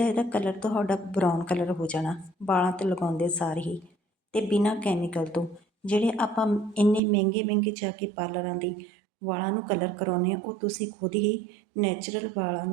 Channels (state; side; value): drops out; left; at 7.0 s